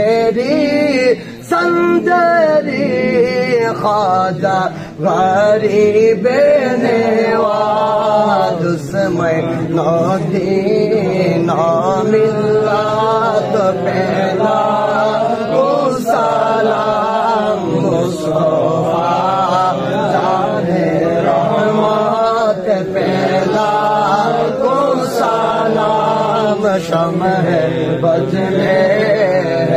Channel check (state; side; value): identical; both; correlation 1.00